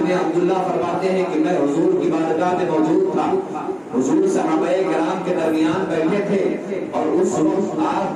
عبداللہ فرماتے ہیں کہ میں حضور کی بارگاہ میں موجود تھا، حضور صحابہ کرام کے درمیان بیٹھے تھے، اور اس وقت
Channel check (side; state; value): both; identical; correlation 1.00